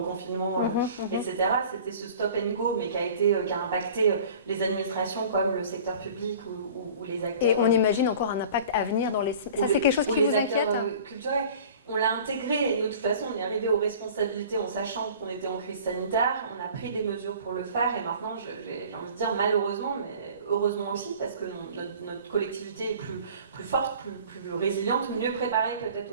etc. C'était ce stop and go, mais qui a impacté les administrations comme le secteur public ou les acteurs. Et on imagine encore un impact à venir dans les... Ça, c'est quelque chose qui vous inquiète culturels. On l'a intégré et de toute façon on est arrivé aux responsabilités en sachant qu'on était en crise sanitaire, on a pris des mesures pour le faire et maintenant j'ai envie de dire malheureusement, mais heureusement aussi parce que notre collectivité est plus forte, plus résiliente, mieux préparée peut-être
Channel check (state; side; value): inverted; both; correlation -0.45